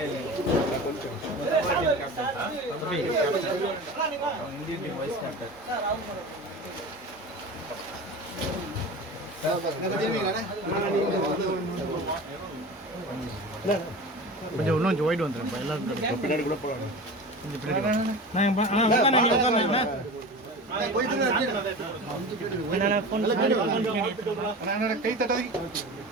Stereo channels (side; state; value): both; normal; correlation 0.32